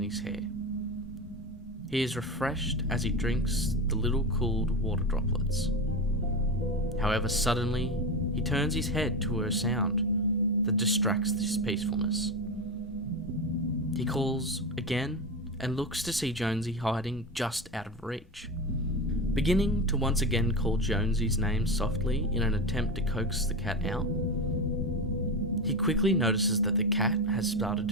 his hair. He is refreshed as he drinks the little cooled water droplets. However, suddenly, he turns his head to a sound that distracts his peacefulness. He calls again and looks to see Jonesy hiding just out of reach. Beginning to once again call Jonesy's name softly in an attempt to coax the cat out, he quickly notices that the cat has started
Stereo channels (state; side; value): normal; both; correlation 0.19